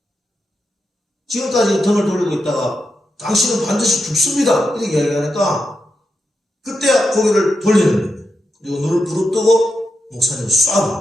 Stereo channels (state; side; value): normal; both; correlation 0.86